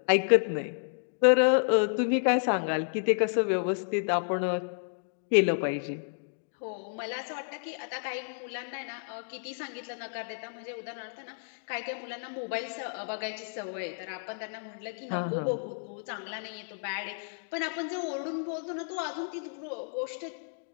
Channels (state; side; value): silent; right; digital silence